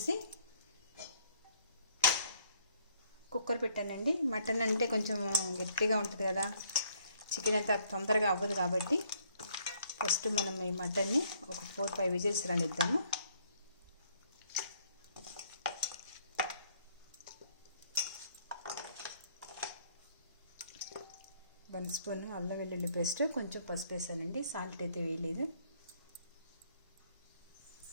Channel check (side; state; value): both; inverted; correlation -0.65